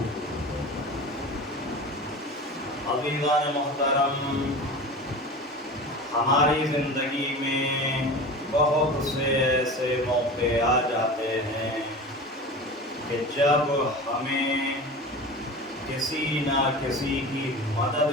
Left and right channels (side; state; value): both; normal; correlation 0.33